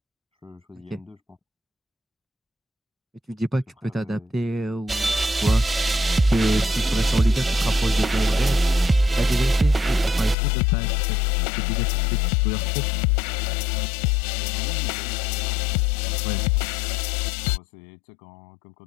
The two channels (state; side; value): drops out; right; at 10.4 s